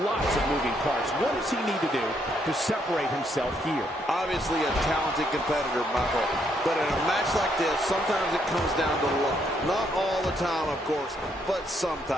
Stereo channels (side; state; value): both; normal; correlation 0.73